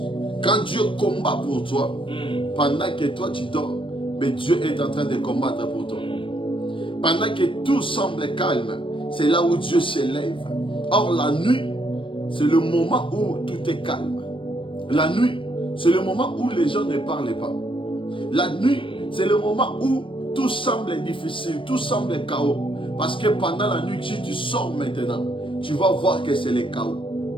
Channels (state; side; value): late; right; 0.25 ms